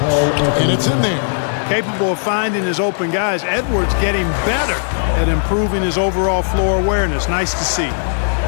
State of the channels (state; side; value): silent; right; digital silence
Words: And it's in there. Capable of finding his open guys. Edwards getting better at improving his overall floor awareness. Nice to see.